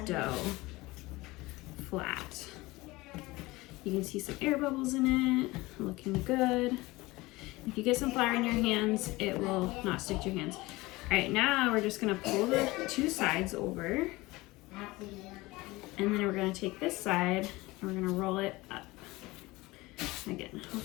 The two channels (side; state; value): right; quieter; 21.0 dB